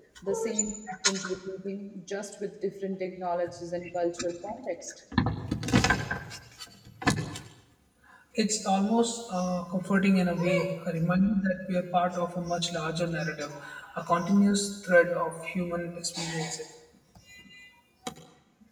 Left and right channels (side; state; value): both; identical; correlation 1.00